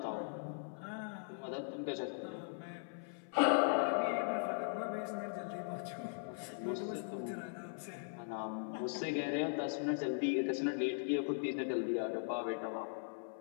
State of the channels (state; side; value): silent; right; 51 dB below the other